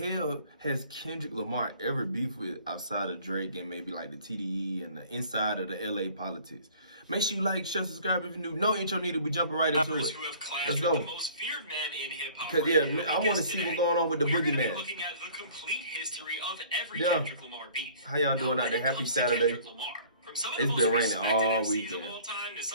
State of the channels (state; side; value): inverted; both; correlation -0.51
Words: has Kendrick Lamar ever beefed with outside of Drake and maybe like the TDE and the inside of the LA politics? Make sure you like, share, subscribe if you're new. No intro needed. We jumping right into it. Let's go. The most feared man in hip-hop Cause yeah, I want to see what's going on with the boogeyman. We're looking at the complete history of every Kendrick Lamar beef. How y'all doing out there? Happy Saturday. It's been raining all weekend. Of all time to